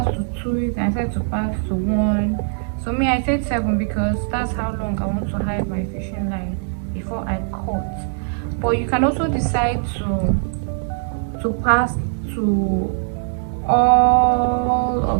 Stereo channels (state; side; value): silent; left; digital silence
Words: to 2, you can set to pass to 1. So me, I set 7 because that's how long I want to hide my fishing line before I cut. But you can also decide to pass to all